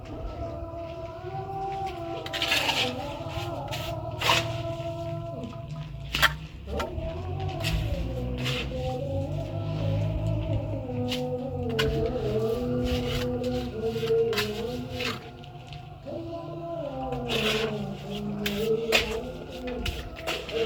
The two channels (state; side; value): identical; both; correlation 1.00